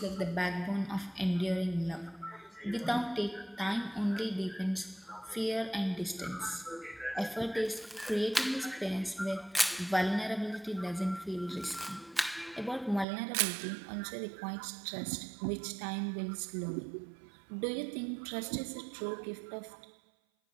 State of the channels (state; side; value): drops out; left; at 13.1 s